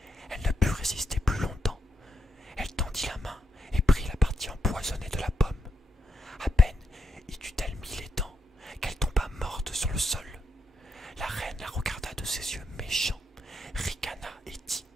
elle ne put résister plus longtemps. Elle tendit la main et prit la partie empoisonnée de la pomme. À peine y eut-elle mis les dents qu'elle tomba morte sur le sol. La reine la regarda de ses yeux méchants, ricana et dit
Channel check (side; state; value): both; normal; correlation 0.81